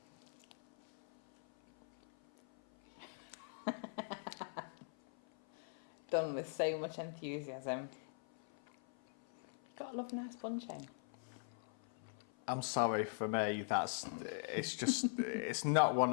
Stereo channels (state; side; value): silent; right; 50 dB below the other